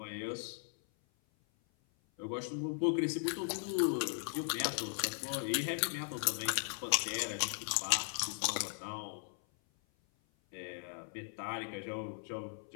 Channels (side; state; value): right; silent; 53 dB below the other